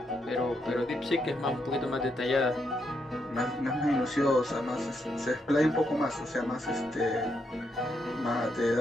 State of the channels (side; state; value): both; normal; correlation 0.79